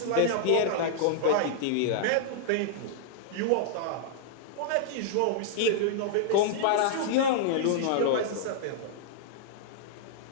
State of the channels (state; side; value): different; both; correlation -0.01